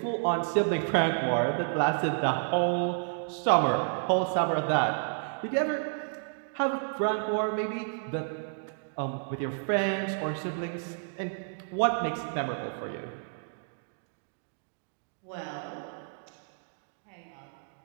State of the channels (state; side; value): silent; left; digital silence